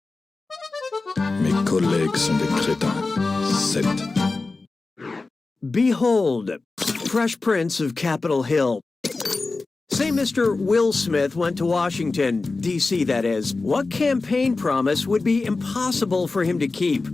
Mes collègues sont des crétins. 7. Behold, Fresh Prince of Capitol Hill. Say Mr. Will Smith went to Washington, D.C. that is. What campaign promise would be impossible for him to keep?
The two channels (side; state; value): right; quieter; 3.7 dB